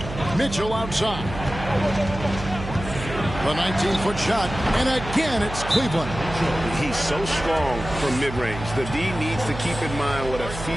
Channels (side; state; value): right; noise; hum, 10 dB below the sound